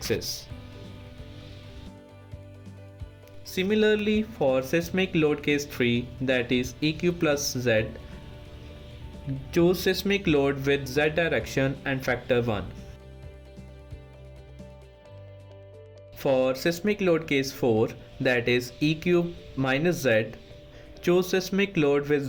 Similarly, for seismic load case 3, that is EQ plus Z, choose seismic load with Z direction and factor 1. For seismic load case 4, that is EQ minus Z, choose seismic load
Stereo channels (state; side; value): identical; both; correlation 1.00